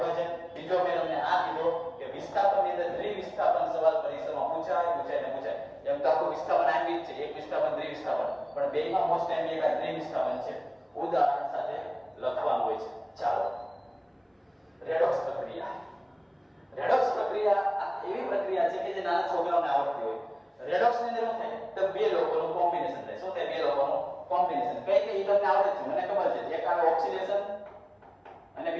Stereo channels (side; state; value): both; identical; correlation 1.00